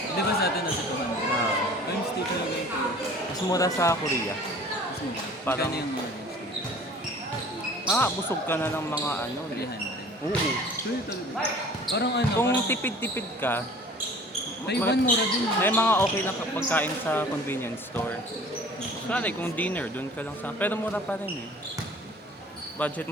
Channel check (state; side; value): normal; both; correlation 0.47